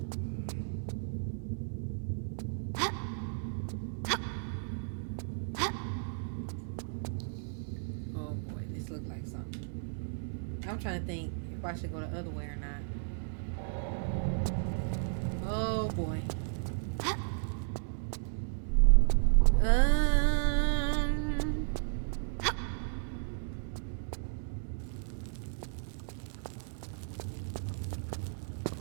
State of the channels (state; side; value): silent; left; digital silence